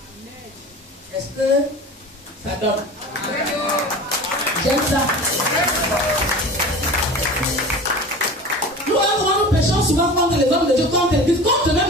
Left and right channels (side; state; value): both; normal; correlation 0.36